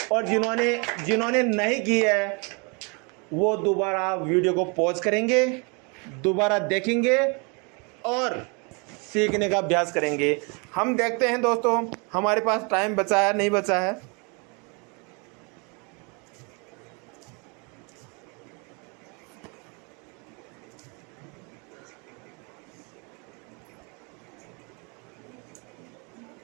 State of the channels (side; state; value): left; quieter; 32.7 dB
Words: और जिन्होंने नहीं की है वो दोबारा वीडियो को पॉज करेंगे, दोबारा देखेंगे और सीखने का अभ्यास करेंगे। हम देखते हैं दोस्तों हमारे पास टाइम बचा है नहीं बचा है।